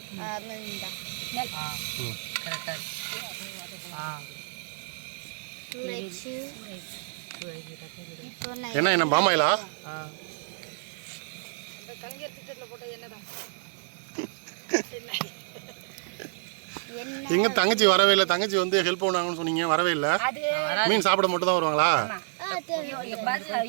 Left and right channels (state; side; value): silent; left; digital silence